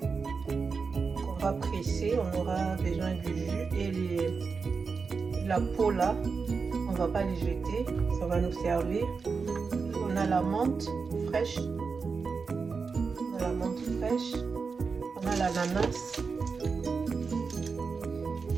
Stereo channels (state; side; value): quieter; left; 5.0 dB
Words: qu'on va presser, on aura besoin du jus et la peau là, on va pas les jeter, ça va nous servir. On a la menthe fraîche, on a l'ananas,